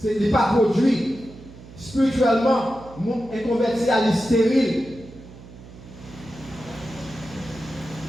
Il n'est pas produit. Spirituellement, le monde inconverti à stérile.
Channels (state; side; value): noise; right; hum, 18 dB below the sound